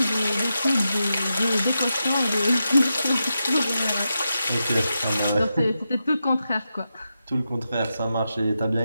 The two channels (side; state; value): both; inverted; correlation -0.89